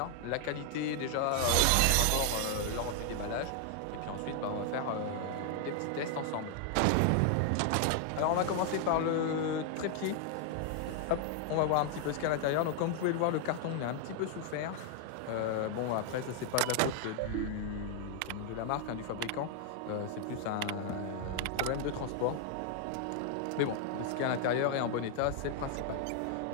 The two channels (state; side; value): different; both; correlation 0.00